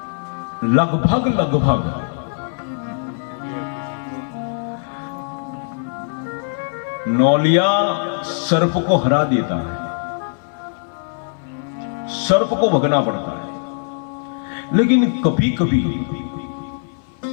लगभग नौलिया सर्प को हरा देता है, सर्प को भगना पड़ता है। लेकिन कभी कभी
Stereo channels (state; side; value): silent; right; 62 dB below the other